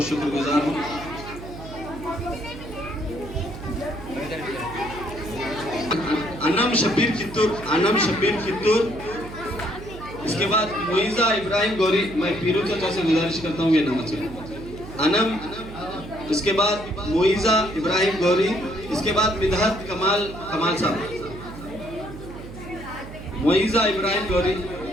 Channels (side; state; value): right; noise; hum, 13 dB below the sound